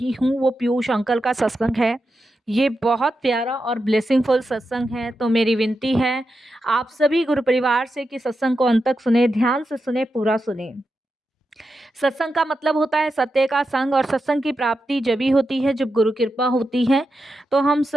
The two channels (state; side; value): normal; both; correlation 0.88